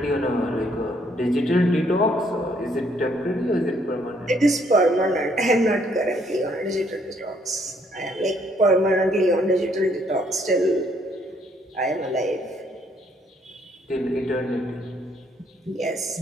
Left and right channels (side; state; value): both; normal; correlation 0.68